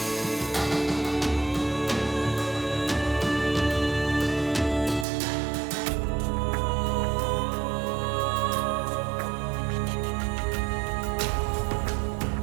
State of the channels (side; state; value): left; drops out; at 5.1 s